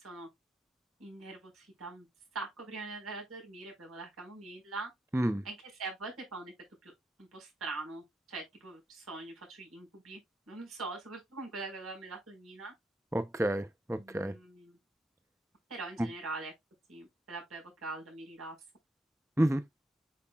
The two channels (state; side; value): normal; both; correlation 0.82